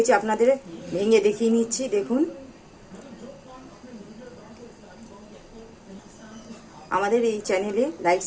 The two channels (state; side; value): identical; both; correlation 1.00